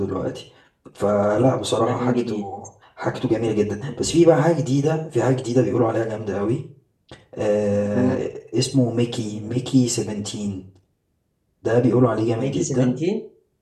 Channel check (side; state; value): both; identical; correlation 1.00